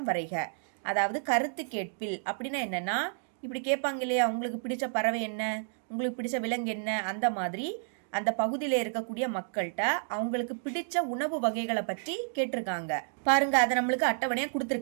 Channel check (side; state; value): left; silent; digital silence